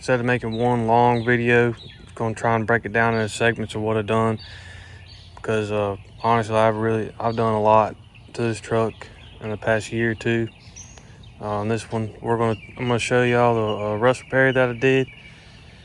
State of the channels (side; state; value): both; identical; correlation 1.00